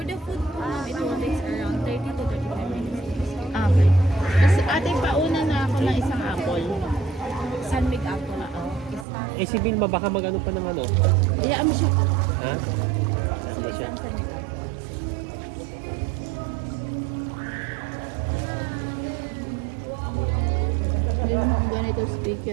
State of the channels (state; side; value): drops out; left; at 9.1 s